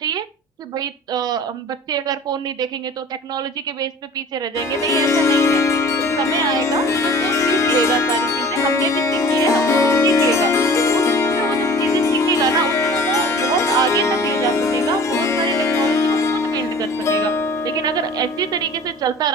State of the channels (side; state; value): both; normal; correlation 0.44